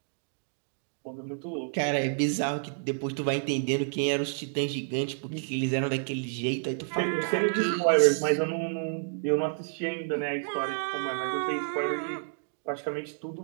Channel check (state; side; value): silent; left; digital silence